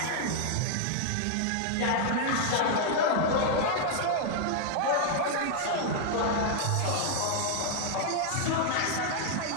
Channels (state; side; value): different; both; correlation 0.00